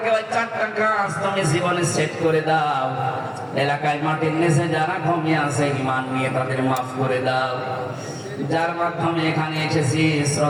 ওই 4টা কাজ তুমি জীবনে সেট করে দাও। এলাকায় মাটির নিচে যারা ঘুমিয়ে আছে ঈমান নিয়ে তাদের মাফ করে দাও। যার মাধ্যমে এখানে এসেছি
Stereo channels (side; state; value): both; identical; correlation 1.00